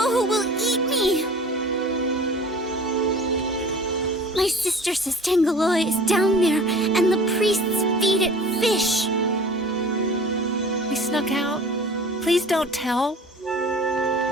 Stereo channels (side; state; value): both; normal; correlation 0.43